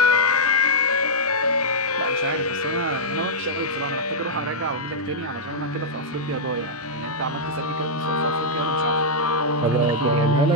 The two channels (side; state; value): both; normal; correlation -0.08